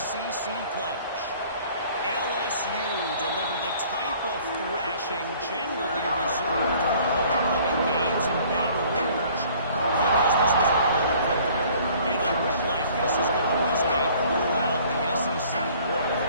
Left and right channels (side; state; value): both; inverted; correlation -0.54